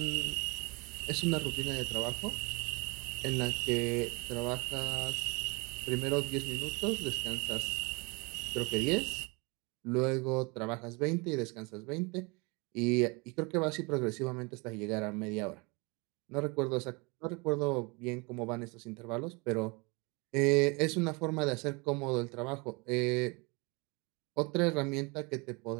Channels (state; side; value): quieter; left; 28.8 dB